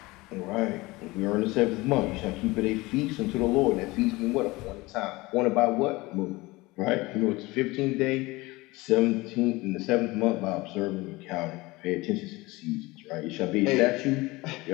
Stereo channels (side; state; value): right; quieter; 21.7 dB